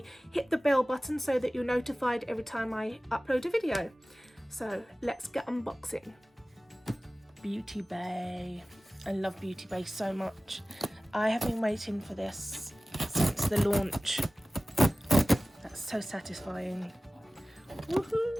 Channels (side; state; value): both; normal; correlation 0.97